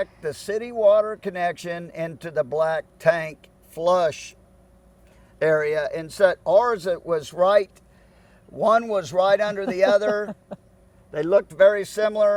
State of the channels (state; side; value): identical; both; correlation 1.00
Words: the city water connection into the black tank flush area. And so ours, it was right, one was right under the other. They looked very